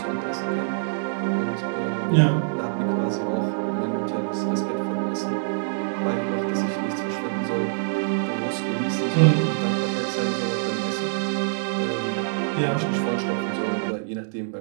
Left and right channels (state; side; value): silent; left; digital silence